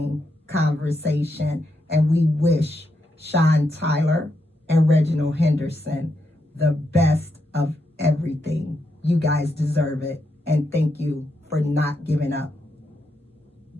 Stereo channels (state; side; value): normal; both; correlation 0.82